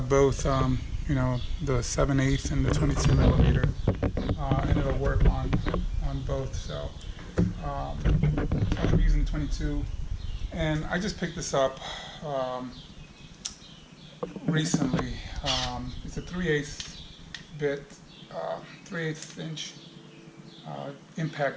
both. The 7/8 and the 22 millimeter. And it'll work on both. So I'm using 22, and I just picked this up recently. It's a 3/8 bit, 3/8 inch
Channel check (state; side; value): identical; both; correlation 1.00